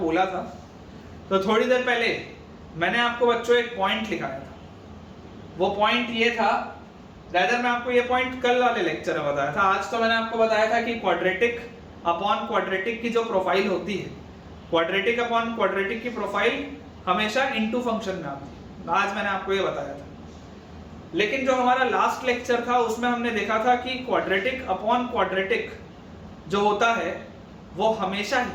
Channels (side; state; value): both; identical; correlation 1.00